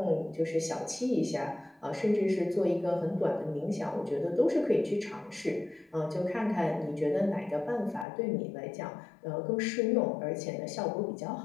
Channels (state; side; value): drops out; right; at 8.1 s